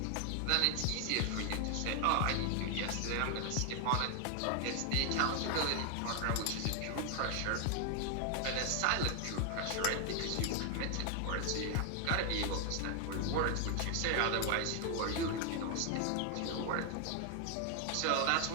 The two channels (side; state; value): both; different; correlation 0.00